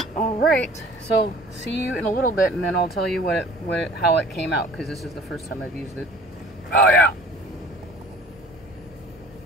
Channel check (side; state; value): both; normal; correlation 0.48